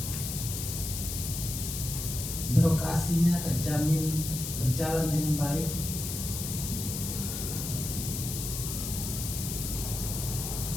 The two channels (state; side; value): noise; left; hiss, 5 dB below the sound